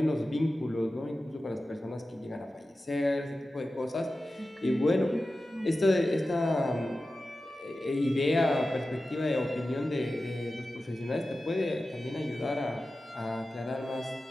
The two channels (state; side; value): normal; both; correlation 0.94